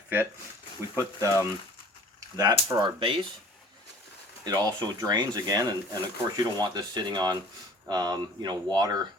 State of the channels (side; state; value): both; normal; correlation 0.47